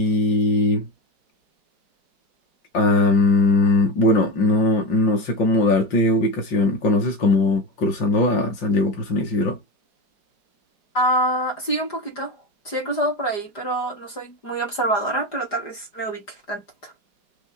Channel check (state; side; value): late; right; 4.9 ms